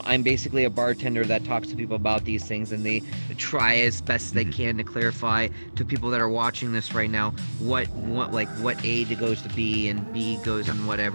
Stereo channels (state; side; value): inverted; both; correlation -1.00